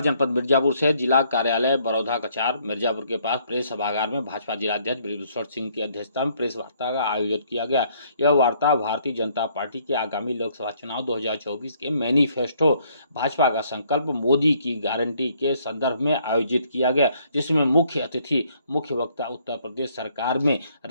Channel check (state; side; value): inverted; both; correlation -0.66